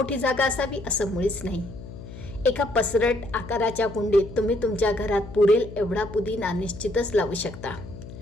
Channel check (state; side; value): noise; left; hum, 13 dB below the sound